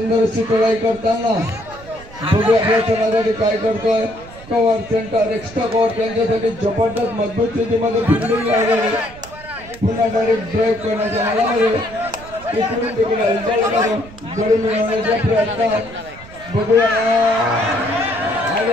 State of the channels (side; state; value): right; noise; rumble, 19 dB below the sound